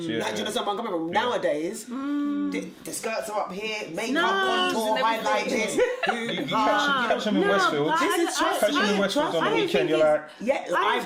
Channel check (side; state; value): both; identical; correlation 1.00